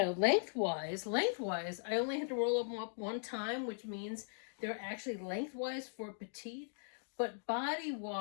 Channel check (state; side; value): silent; right; digital silence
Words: I only had to roll them up one time, which means they're actually lengthwise for petite, but body